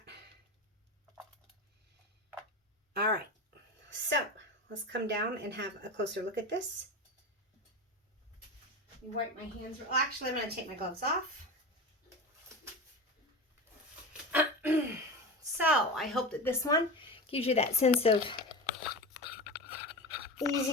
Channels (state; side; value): normal; both; correlation 0.25